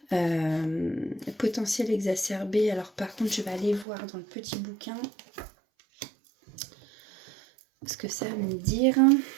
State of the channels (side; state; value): left; drops out; at 3.9 s